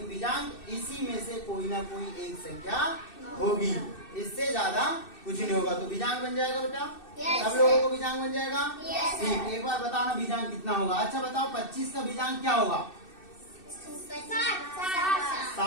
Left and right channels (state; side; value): late; right; 2.6 ms